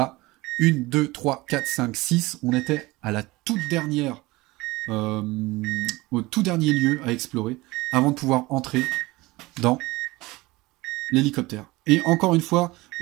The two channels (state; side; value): quieter; left; 21.0 dB